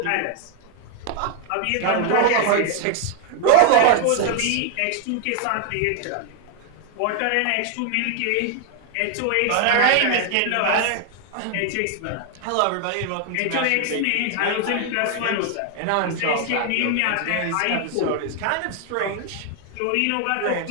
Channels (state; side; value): different; both; correlation 0.00